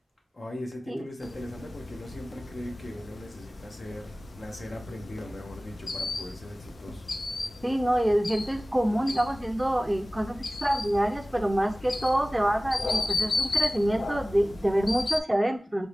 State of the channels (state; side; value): normal; both; correlation 0.97